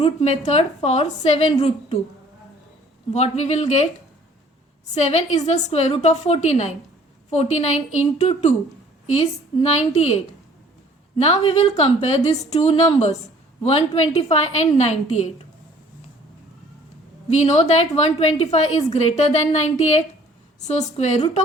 method for 7 root 2. What we will get? 7 is the square root of 49. 49 into 2 is 98. Now we will compare these two numbers, 125 and 98. We know that 125 is greater than 98. So square root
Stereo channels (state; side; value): normal; both; correlation 0.55